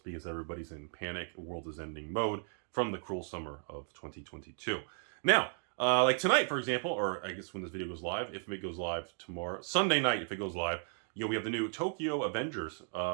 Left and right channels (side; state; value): left; silent; 54 dB below the other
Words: everybody's in panic, the world is ending mode from the cruel summer of 2022. Now, Like tonight, for example, or I guess when this video goes live, if it goes live tomorrow, Sunday night, if it goes live, we have the new Tokyo Avengers